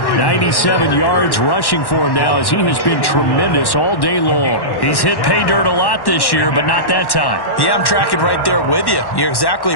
97 yards rushing for him now as he has been tremendous all day long. He's hit pay dirt a lot this year, but not that time. Yeah, I'm tracking right there with you. You're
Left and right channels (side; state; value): right; late; 1.1 ms